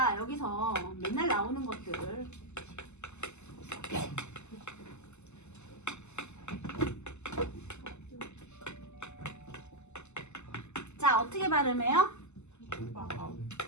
여기서 맨날 나오는 것들 자 어떻게 발음해요?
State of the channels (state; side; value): late; right; 0.83 ms